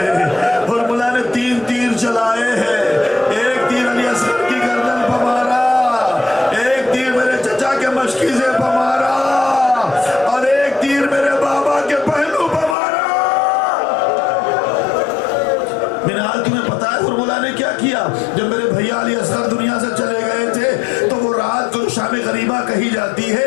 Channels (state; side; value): drops out; right; at 12.8 s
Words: ہرملہ نے 3 تیر چلائے ہیں، ایک تیر علی اصغر کی گردن پر مارا، ایک تیر میرے چچا کے مشکی سے پر مارا، اور ایک تیر میرے بابا کے پہلو پر مارا۔ منحال تمہیں پتا ہے ہرملہ نے کیا کیا؟ جب میرے بھیا علی اصغر دنیا سے چلے گئے تھے تو وہ رات کو شام غریبہ کہی جاتی ہے،